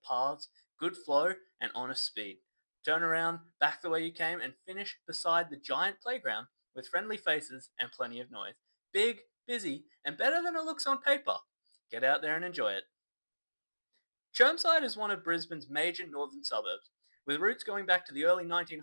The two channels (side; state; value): both; inverted; correlation -1.00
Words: paths, good flow, and honest speed. Turn around, back the way you came, and finish beside the giant playground with friendly faces and plenty of noise. Big, busy, and better than it looks on paper. Get out there and enjoy it. Chermside is one of Brisbane's major northern suburbs, with roots going back to the early